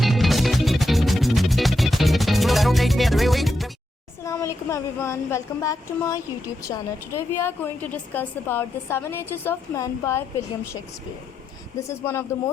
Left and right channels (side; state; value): both; normal; correlation 0.85